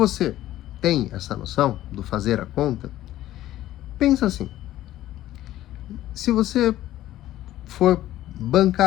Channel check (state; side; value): quieter; right; 14.1 dB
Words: tem essa noção do fazer a conta, pensa assim, se você for